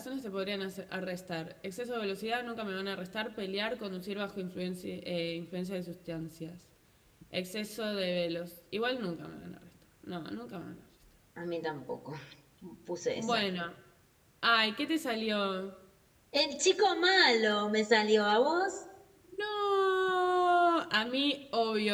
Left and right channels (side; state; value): both; identical; correlation 1.00